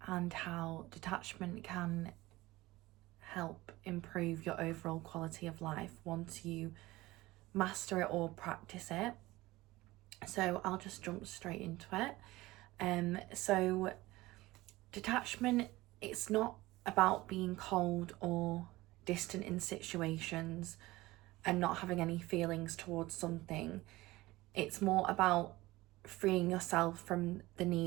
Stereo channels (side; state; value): left; quieter; 19.0 dB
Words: and how detachment can help improve your overall quality of life once you master it or practice it. So I'll just jump straight into it. So detachment, it's not about being cold or distant in situations and not having any feelings towards something. It's more about freeing yourself from the